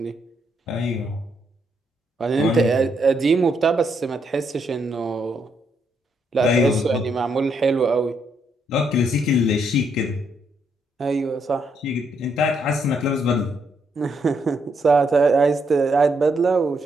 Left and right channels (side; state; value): both; normal; correlation 0.76